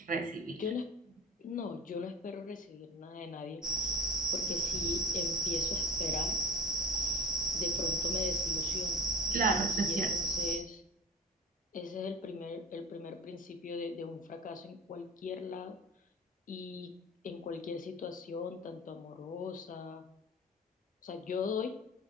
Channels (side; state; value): both; normal; correlation 0.35